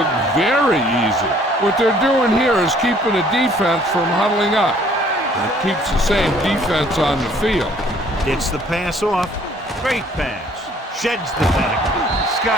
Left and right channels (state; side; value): normal; both; correlation 0.59